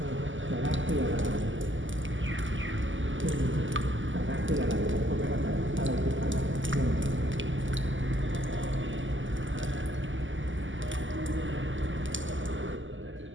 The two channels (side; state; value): left; late; 0.56 ms